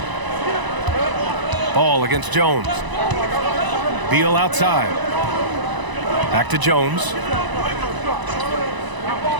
Ball against Jones. Beal outside. Back to Jones.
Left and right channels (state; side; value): late; left; 1.0 ms